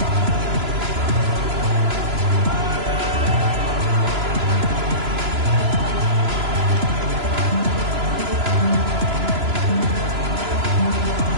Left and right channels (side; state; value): left; late; 3.0 ms